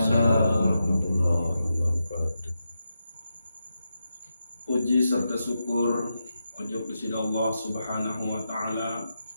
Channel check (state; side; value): inverted; both; correlation -0.87